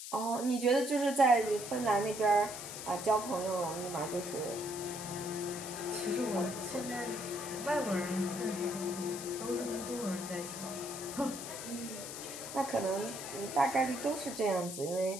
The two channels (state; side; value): noise; left; hiss, 9 dB below the sound